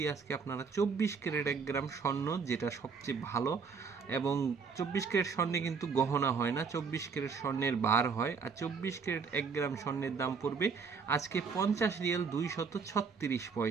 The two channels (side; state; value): left; quieter; 5.4 dB